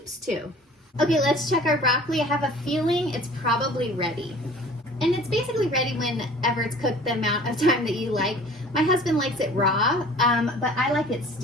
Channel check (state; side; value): normal; both; correlation 0.47